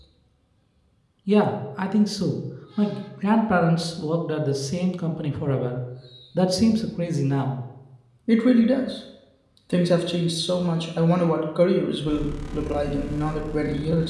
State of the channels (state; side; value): identical; both; correlation 1.00